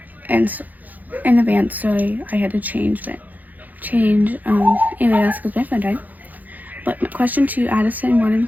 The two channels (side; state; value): left; late; 0.082 ms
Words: and in advance, sorry, I had to change alias because my phone died. But question 2, Addison wanted